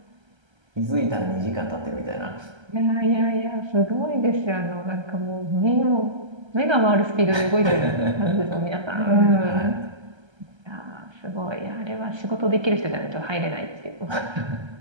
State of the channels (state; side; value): late; left; 1.3 ms